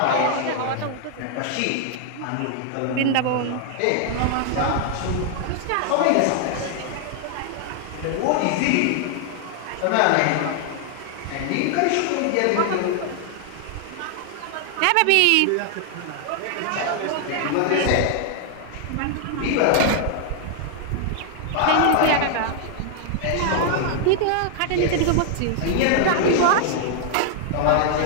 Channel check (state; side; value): different; both; correlation 0.00